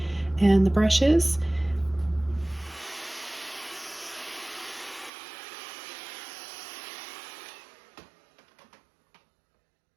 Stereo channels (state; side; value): drops out; left; at 5.1 s